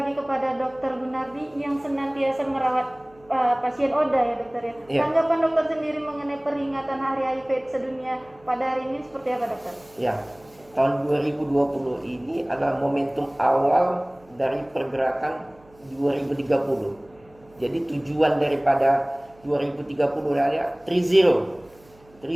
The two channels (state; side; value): noise; right; hum, 29 dB below the sound